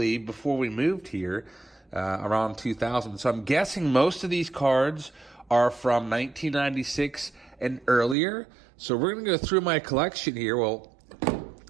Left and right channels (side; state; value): left; drops out; at 8.2 s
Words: before we moved here, around 2000. So I'm guessing most of these cards are from 1996 and earlier. So we're going to go through my collection here, well,